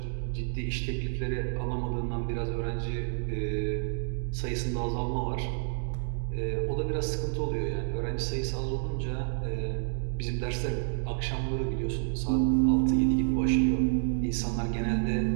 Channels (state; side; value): silent; left; digital silence